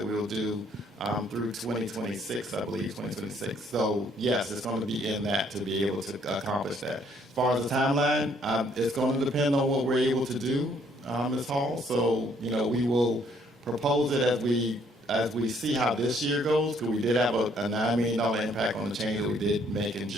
we will do through 2026, I believe, 2026. So yes, it's going to be in that to be able to accomplish that. As far as the timeline, it's going to depend on what we're able to do, Ms. Hall. So, we will propose it as we see how this year goes, because we did have a $9 million impact on the change that we did make in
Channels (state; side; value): normal; both; correlation 0.65